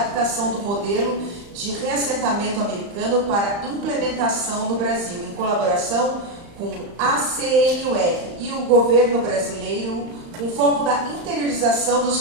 do modelo de reassentamento americano para implementação no Brasil, em colaboração com a CNUR e o governo brasileiro, com foco da interiorização dos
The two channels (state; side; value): late; left; 35 ms